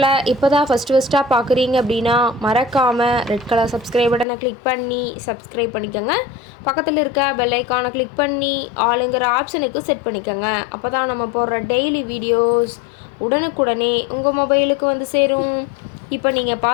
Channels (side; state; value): right; drops out; at 4.2 s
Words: இப்போ தான் ஃபஸ்ட்டாக பார்க்குறீங்க அப்படின்னா மறக்காமல் ரெட் கலர் சப்ஸ்கிரைப் பட்டனை கிளிக் பண்ணி சப்ஸ்கிரைப் பண்ணிக்கோங்க. பக்கத்தில் இருக்க பெல் ஐக்கானை கிளிக் பண்ணி ஆளுங்கிற ஆப்ஷனுக்கு செட் பண்ணிக்கோங்க. அப்போ தான் நம்ம போடுற டெய்லி வீடியோஸ் உடனுக்குடனே உங்கள் மொபைலுக்கு வந்து சேரும். இப்போ நீங்கள்